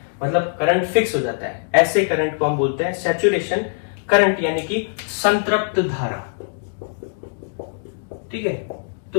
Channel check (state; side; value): silent; right; digital silence